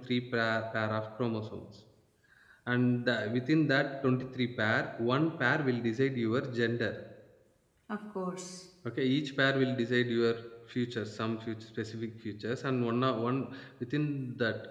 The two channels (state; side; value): identical; both; correlation 1.00